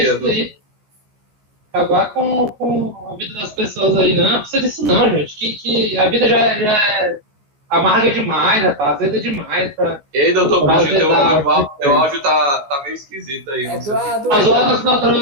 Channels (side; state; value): left; late; 14 ms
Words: Acabar com a vida das pessoas aí, não precisa disso não, gente. Que a vida já é amarga demais, rapaz, azeda demais. Ei, doutor Coutinho, teu áudio tá meio esquisito aí. Eduardo.